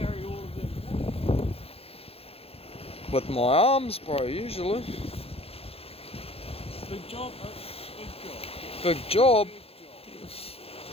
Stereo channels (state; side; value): late; right; 0.28 ms